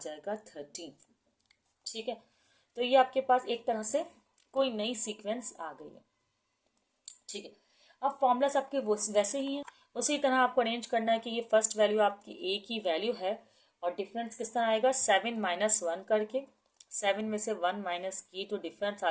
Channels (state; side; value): identical; both; correlation 1.00